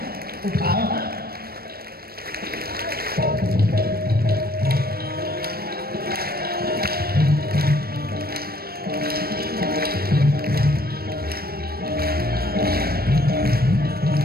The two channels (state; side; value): late; left; 0.44 ms